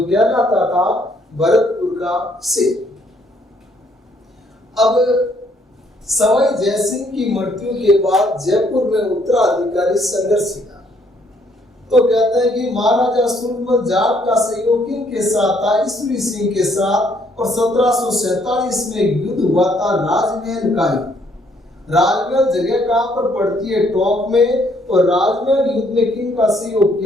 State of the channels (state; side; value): normal; both; correlation 0.67